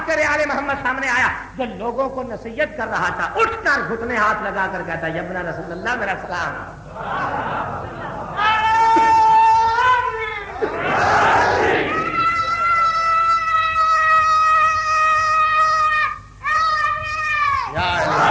آل محمد سامنے آیا، جو لوگوں کو نصیحت کر رہا تھا اٹھ کر گھٹنے ہاتھ لگا کر کہتا یا ابن رسول اللہ میرا سلام۔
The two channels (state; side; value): identical; both; correlation 1.00